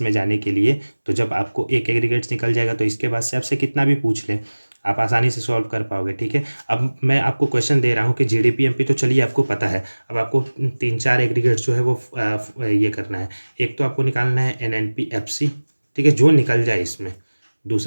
में जाने के लिए। तो जब आपको एक एग्रीगेट्स निकल जाएगा तो इसके बाद से आपसे कितना भी पूछ ले आप आसानी से सॉल्व कर पाओगे। ठीक है, अब मैं आपको क्वेश्चन दे रहा हूँ कि GDP-MP तो चलिए आपको पता है, अब आपको 3-4 एग्रीगेट्स जो है वो ये करना है। एक तो आपको निकालना है NNP-FC, ठीक है, जो निकल जाए इसमें।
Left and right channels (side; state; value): both; inverted; correlation -1.00